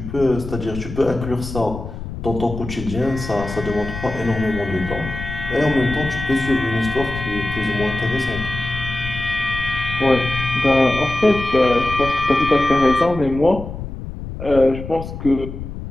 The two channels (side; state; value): left; noise; rumble, 9 dB below the sound